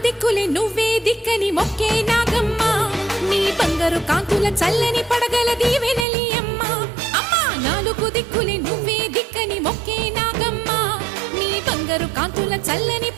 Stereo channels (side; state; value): left; drops out; at 6.1 s